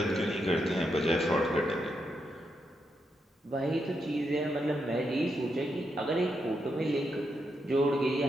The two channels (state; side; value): normal; both; correlation 0.82